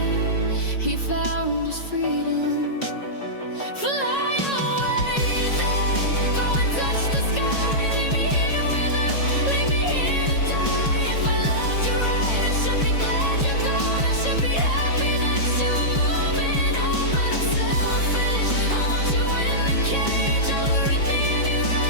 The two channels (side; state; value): right; late; 5.4 ms